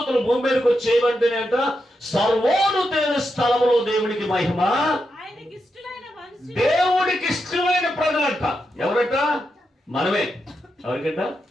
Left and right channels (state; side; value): normal; both; correlation 0.85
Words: భూమి మీదకి వచ్చి ఏమంటేనేట, సర్వోన్నతమైన స్థలములో దేవునికి మహిమ. దేవుడికి ఇష్టమైన ప్రజలంట. ఎవరట? మనమే. ఎవరికంట?